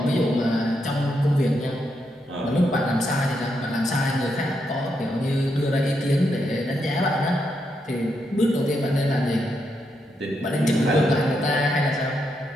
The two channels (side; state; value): both; normal; correlation 0.81